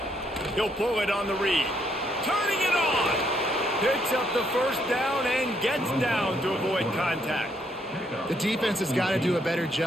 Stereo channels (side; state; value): both; normal; correlation 0.73